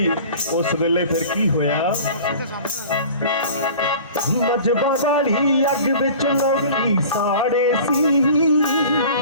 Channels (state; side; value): inverted; both; correlation -0.42